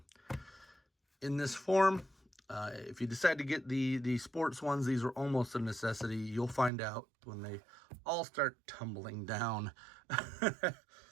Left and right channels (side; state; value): left; drops out; at 6.7 s